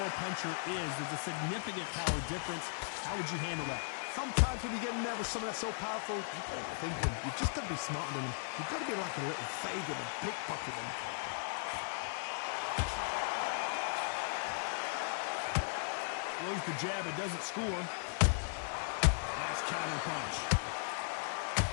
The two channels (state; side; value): silent; right; digital silence